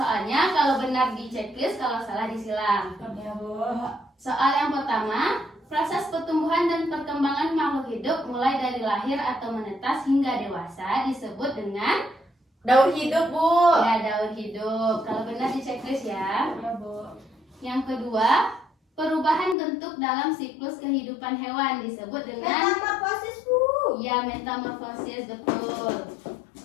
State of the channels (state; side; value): drops out; right; at 19.6 s